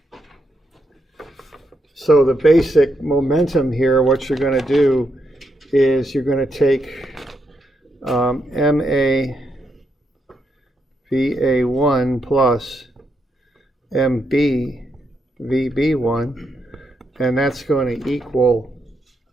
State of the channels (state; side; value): normal; both; correlation 0.81